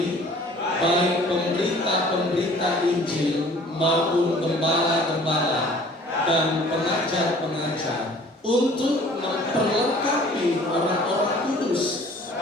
baik pemberita-pemberita Injil maupun gembala-gembala dan pengajar-pengajar, untuk memperlengkapi orang-orang kudus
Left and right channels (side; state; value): both; normal; correlation 0.51